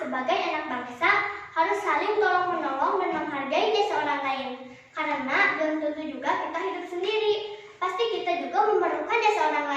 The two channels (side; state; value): both; identical; correlation 1.00